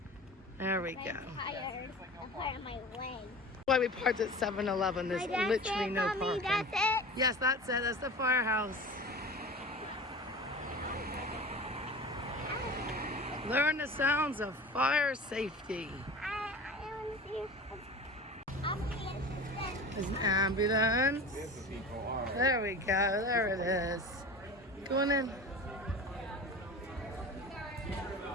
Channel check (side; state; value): both; normal; correlation 0.35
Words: There we go. I'm tired. I'm part of my leg. Why we parked at 7-Eleven. There's literally no parking. That's it. Yes, that's it. That's the firehouse. Learn the sounds of fire safety. I want to see. There's an ambulance. There we go. There it is. Going in.